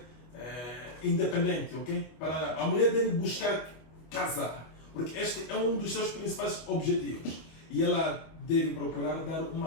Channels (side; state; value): right; late; 25 ms